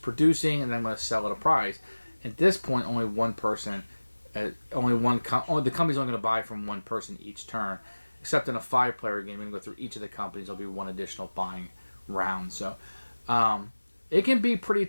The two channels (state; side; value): inverted; both; correlation -1.00